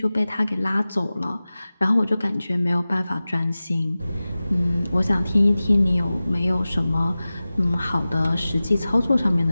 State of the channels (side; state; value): both; inverted; correlation -0.97